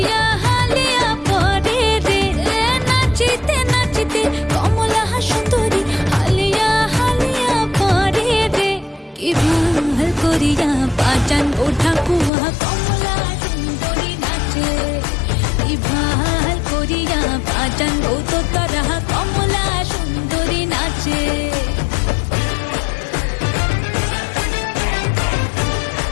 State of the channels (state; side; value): drops out; right; at 12.3 s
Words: হালিয়া পরে রে নাচিতে নাচিতে কমলা সুন্দরী হালিয়া হালিয়া পরে রে কি ভাল করিয়া বাজান গো ঠাকুয়া কমলা সুন্দরী নাচে কি ভাল করিয়া বাজান গো তোতারা কমলা সুন্দরী নাচে